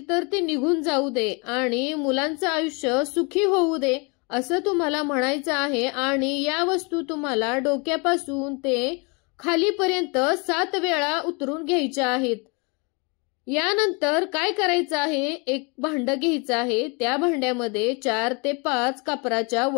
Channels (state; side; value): quieter; right; 31.3 dB